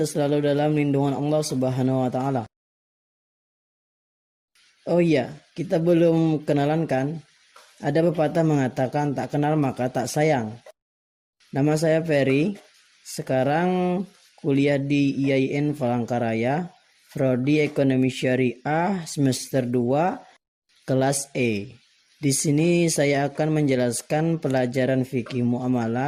selalu dalam lindungan Allah Subhanahu wa taala. Oh iya, kita belum kenalan kan? Ada pepatah mengatakan tak kenal maka tak sayang. Nama saya Ferry. Sekarang kuliah di IAIN Palangkaraya, Prodi Ekonomi Syariah semester 2 kelas E. Di sini saya akan menjelaskan pelajaran fikih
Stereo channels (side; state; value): both; identical; correlation 1.00